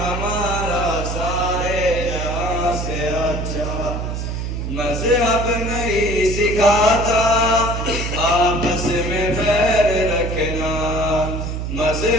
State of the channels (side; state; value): right; noise; hum, 3 dB below the sound